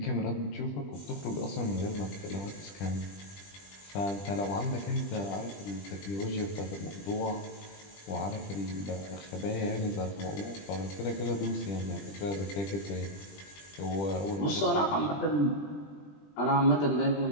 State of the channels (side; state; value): right; late; 20 ms